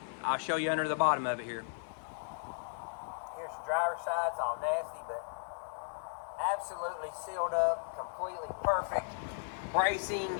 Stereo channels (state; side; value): silent; right; 54 dB below the other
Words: I'll show you under the bottom of it here. Here's the driver's side. It's all nasty, but absolutely sealed up, completely perfect. Bracing,